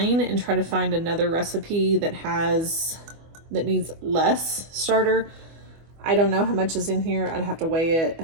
try to find another recipe that needs less starter. I don't know how much is in here. I'd have to weigh it.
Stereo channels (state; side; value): late; left; 25 ms